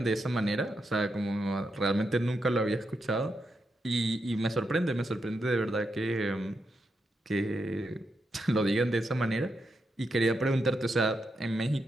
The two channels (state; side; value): normal; both; correlation 0.84